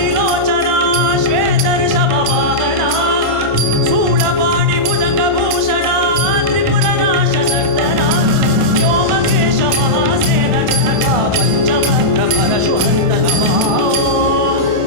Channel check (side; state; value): left; late; 1.5 ms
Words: श्वेत ऋषभ वाहना शूलपाणि भुजंग भूषणा त्रिपुर नाश नर्तना व्योमकेश